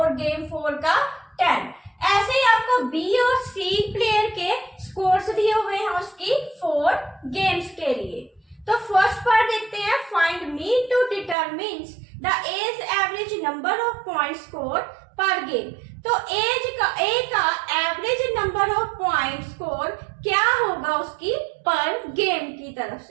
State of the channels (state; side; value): drops out; left; at 11.4 s